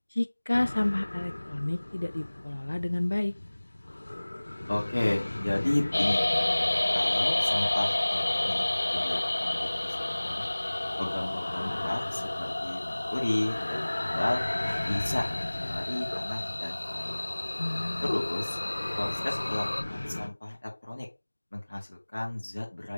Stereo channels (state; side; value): inverted; both; correlation -1.00